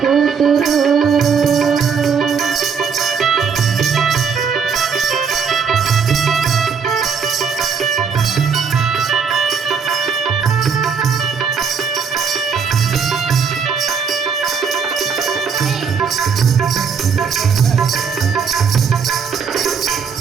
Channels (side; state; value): left; quieter; 6.1 dB